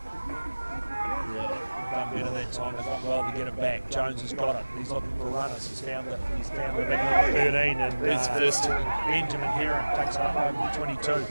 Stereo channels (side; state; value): both; inverted; correlation -1.00